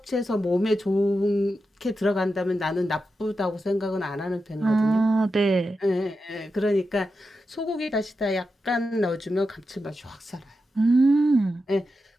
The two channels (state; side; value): normal; both; correlation 0.89